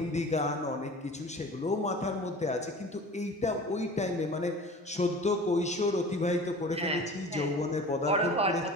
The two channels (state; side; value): normal; both; correlation 0.40